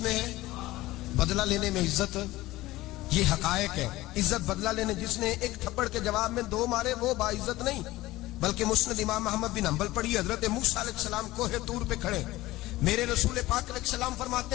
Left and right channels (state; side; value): quieter; right; 17.9 dB